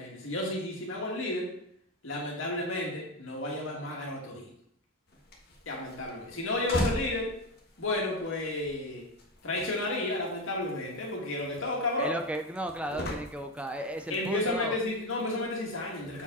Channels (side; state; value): both; normal; correlation 0.14